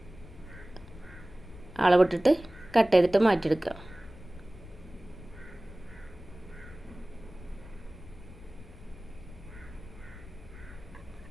അളവിട്ടിട്ട് കട്ട് ചെയ്തിട്ട് മാറ്റിയെടുക്കുക.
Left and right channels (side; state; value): left; noise; rumble, 17 dB below the sound